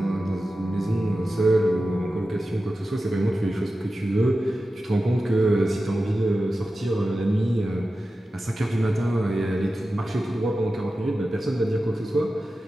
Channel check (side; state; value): both; normal; correlation 0.93